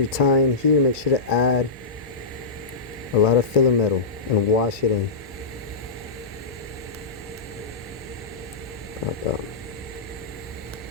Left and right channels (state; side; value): quieter; right; 4.0 dB